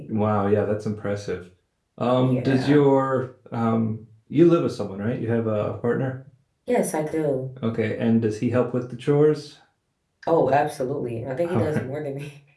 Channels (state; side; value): identical; both; correlation 1.00